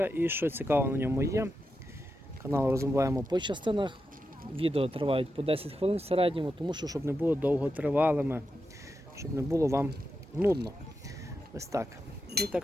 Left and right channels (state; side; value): normal; both; correlation 0.88